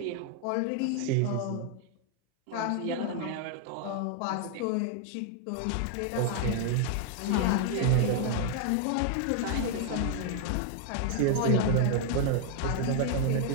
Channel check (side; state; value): both; different; correlation 0.00